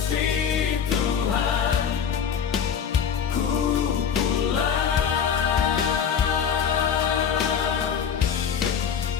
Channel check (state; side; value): quieter; right; 7.6 dB